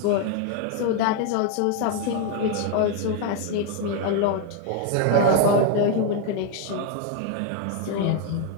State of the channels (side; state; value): both; different; correlation 0.01